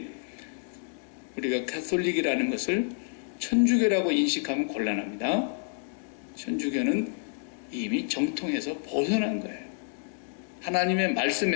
우리가 캐톨릭이라는 것을 천주교라고 인식하면 곤란합니다. 천주교는 이미 정통에서 벗어난 거예요. 하나님의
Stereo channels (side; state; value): right; silent; 59 dB below the other